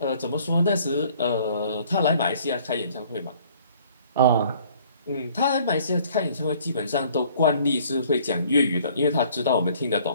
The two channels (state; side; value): inverted; both; correlation -0.56